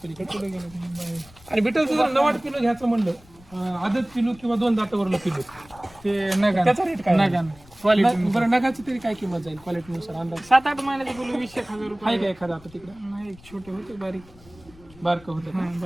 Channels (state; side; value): noise; left; rumble, 24 dB below the sound